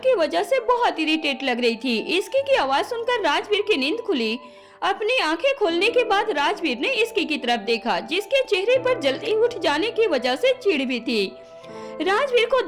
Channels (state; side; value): identical; both; correlation 1.00